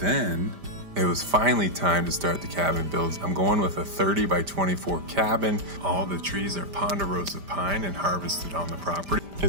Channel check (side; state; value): left; late; 5.0 ms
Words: it was finally time to start the cabin builds. I'm going with a 30 by 24 cabin. All the trees are ponderosa pine and harvested on the property.